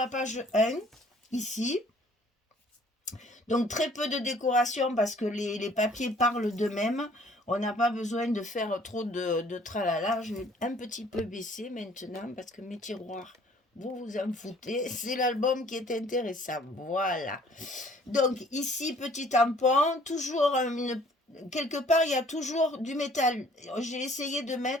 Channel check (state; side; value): normal; both; correlation 0.57